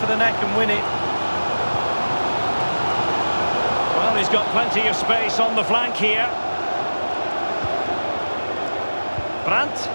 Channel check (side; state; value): both; inverted; correlation -1.00